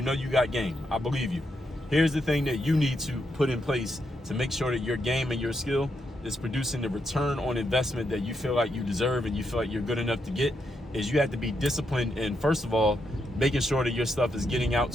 got game, I believe you. Here's the thing that you need to put in place to make sure that your game and your skill is producing the return on investment that you feel like you deserve and you feel like you're good enough to get, is you have to be disciplined in, first of all, making sure that your stuff is getting out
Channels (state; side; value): normal; both; correlation 0.81